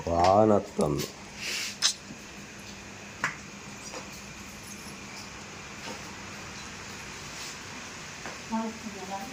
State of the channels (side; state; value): both; identical; correlation 1.00